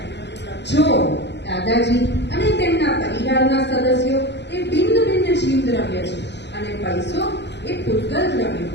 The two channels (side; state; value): right; late; 0.50 ms